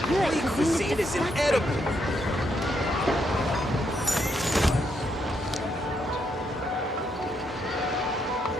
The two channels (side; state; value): both; normal; correlation 0.77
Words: Holy cuisine is inedible.